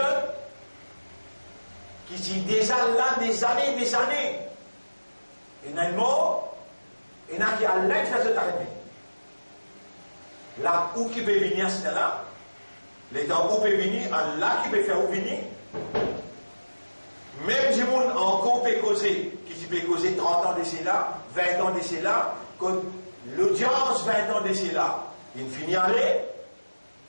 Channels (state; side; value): inverted; both; correlation -1.00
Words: qui dit déjà là des années, il y a un mot, il y en a qui a l'aide de faire arriver. Là où qui peut venir, c'est là. Les temps où peut venir, là qui peut faire où venir. Même si on encore peut causer, qui peut causer 30 ans d'ici là, 20 ans d'ici là, quand l'audience 20 ans d'ici là, il finit à aller,